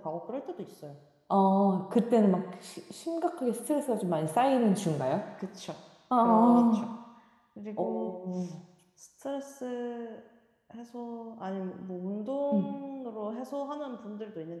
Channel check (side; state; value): both; identical; correlation 1.00